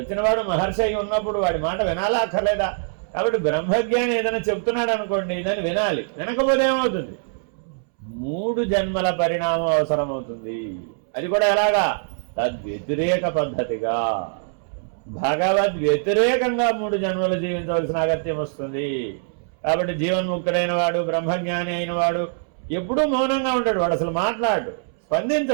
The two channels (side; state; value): left; silent; 63 dB below the other